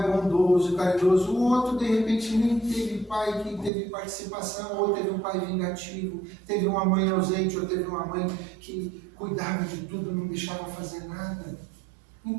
bondoso, caridoso, o outro, de repente, nem teve pai que teve participação, ou teve um pai vingativo, teve uma mãe ausente, ou teve uma mãe que cuidava de tudo, não deixava fazer nada.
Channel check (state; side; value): drops out; left; at 3.7 s